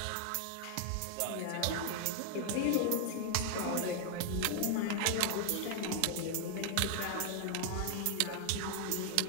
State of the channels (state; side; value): different; both; correlation 0.00